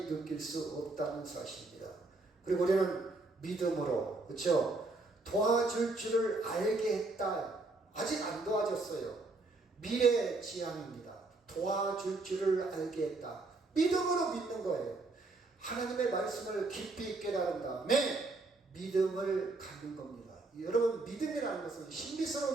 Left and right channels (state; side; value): quieter; left; 3.3 dB